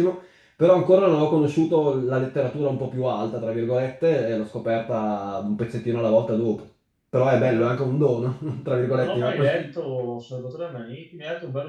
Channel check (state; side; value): identical; both; correlation 1.00